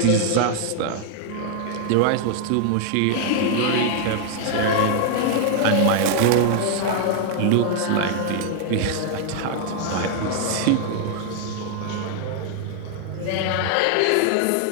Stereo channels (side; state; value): both; different; correlation 0.00